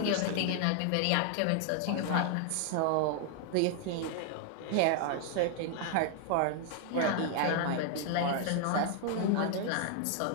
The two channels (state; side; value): different; both; correlation 0.00